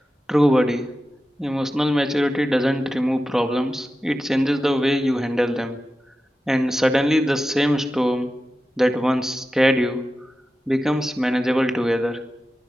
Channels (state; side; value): normal; both; correlation 0.92